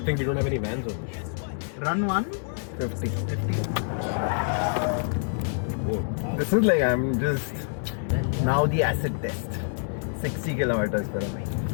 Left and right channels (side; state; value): right; silent; digital silence